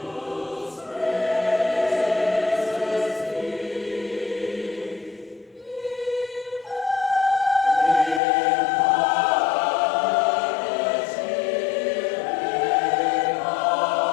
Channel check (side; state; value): right; drops out; at 8.2 s